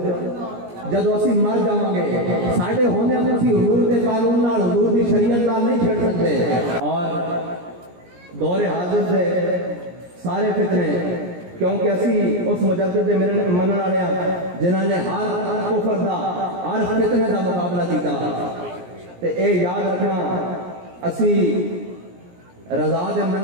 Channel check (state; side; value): late; left; 17 ms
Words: جدو اسی مر جاؤں گے ساڑھے ہونے ہمیں اسی حضور دے قانون نال حضور دی شریعت نال نہیں چھڑ سکتے۔ اور دور حاضر سے سارے فتنے، کیونکہ اسی اس مجدد دے منن والے جنہاں نے ہر کفر دا ہر فتنے دا مقابلہ کیتا، تے اے یاد رکھنا اسی رضا دے